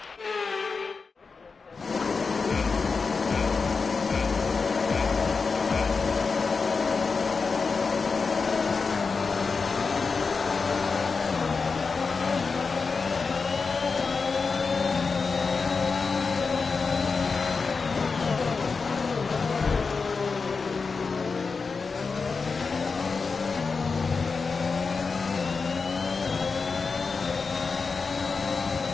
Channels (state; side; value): quieter; right; 4.7 dB